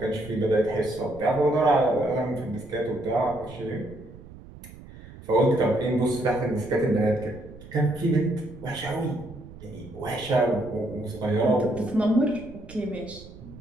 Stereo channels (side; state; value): right; noise; rumble, 17 dB below the sound